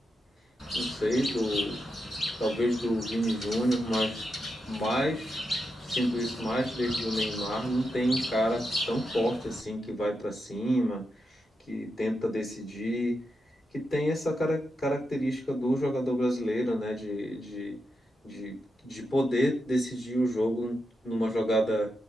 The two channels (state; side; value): normal; both; correlation 0.86